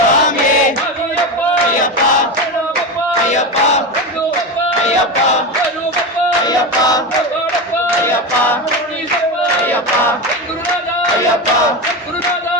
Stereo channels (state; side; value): normal; both; correlation 0.19